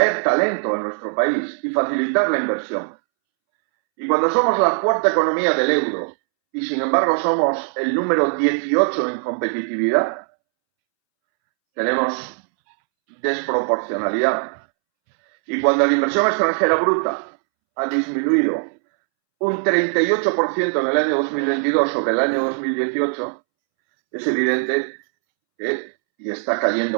talento a nuestro país y facilitar la inversión. Y cuando somos la cuarta economía del euro y sin embargo somos el número 18 en competitividad, tenemos desproporcionalidad. Y cuando la inversión extranjera bruta ha disminuido un 38% en el año 2022 sobre el año 2018, es evidente que, y está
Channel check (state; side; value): silent; left; 66 dB below the other